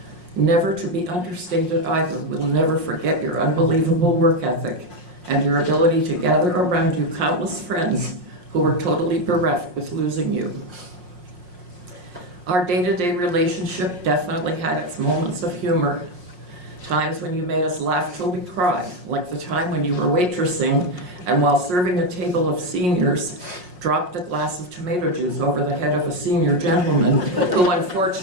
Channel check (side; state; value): left; late; 5.6 ms